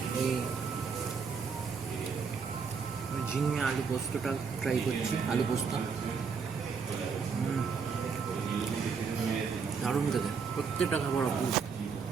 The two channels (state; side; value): quieter; left; 5.6 dB